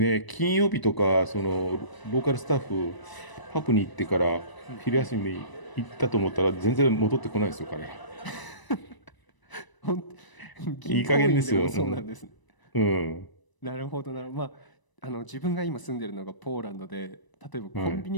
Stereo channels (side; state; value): right; late; 1.0 ms